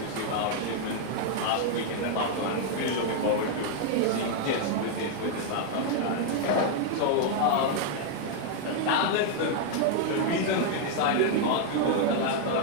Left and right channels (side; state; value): both; different; correlation 0.00